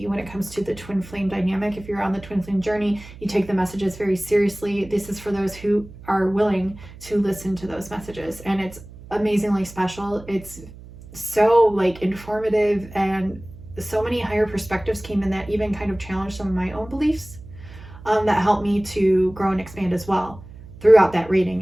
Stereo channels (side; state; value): right; noise; hum, 17 dB below the sound